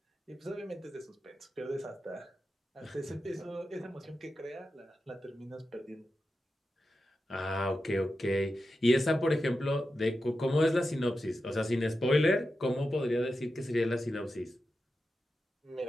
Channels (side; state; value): both; normal; correlation 0.90